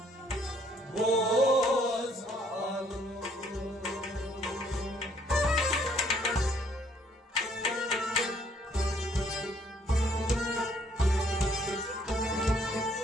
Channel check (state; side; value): normal; both; correlation 0.65